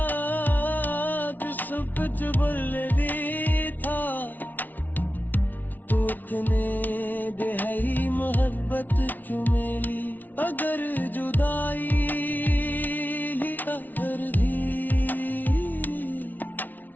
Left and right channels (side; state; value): right; late; 0.082 ms